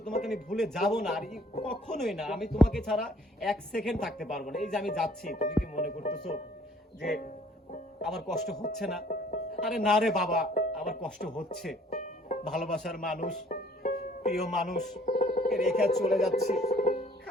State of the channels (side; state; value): both; normal; correlation 0.58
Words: তোমাকে আমি ভুলে যাব না, আর কখনোই না, আমি তোমাকে ছাড়া 1 সেকেন্ড থাকতে পারবো না। এই যে আমি যাচ্ছি, তুমি কি মনে করতেছো যে আমার কষ্ট হচ্ছে না? আরে না রে বাবা, আমার কষ্ট হচ্ছে। ভালোবাসার মানুষ, প্রিয় মানুষ রেখে চলে যাচ্ছি,